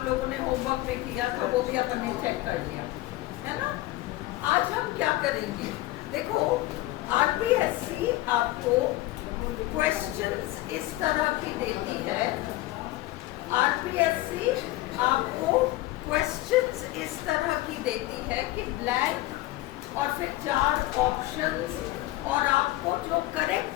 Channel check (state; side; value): quieter; right; 17.7 dB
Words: लोगों ने होमवर्क में किया था, वो भी अपन ने चेक कर लिया है ना। आज हम क्या करेंगे, देखो आरपीएससी आपको क्वेश्चंस इस तरह की देती है, आरपीएससी आपको क्वेश्चंस इस तरह की देती है कि ब्लैंक और फिर 4 ऑप्शंस और आपको जो